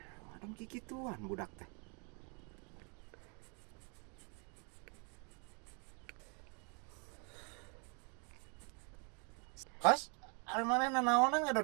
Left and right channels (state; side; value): quieter; left; 36.0 dB